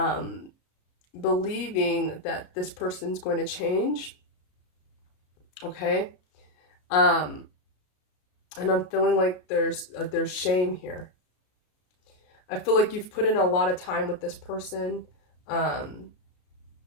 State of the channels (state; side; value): late; right; 33 ms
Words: believing that this person's going to change, okay? And I'm feeling like there's shame here. I feel like you've put in a lot of time with this person, and